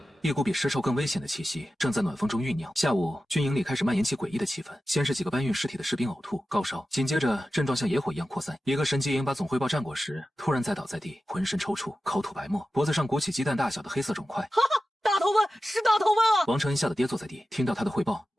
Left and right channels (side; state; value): both; normal; correlation 0.94